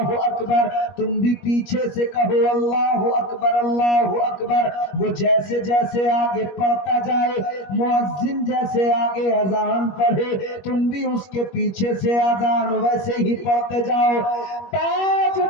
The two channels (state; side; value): late; right; 21 ms